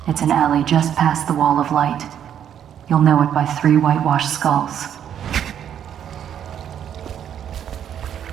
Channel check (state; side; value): quieter; left; 9.4 dB